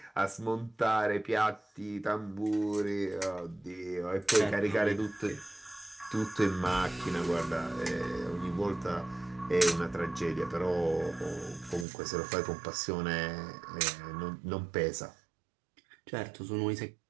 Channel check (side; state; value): left; drops out; at 11.9 s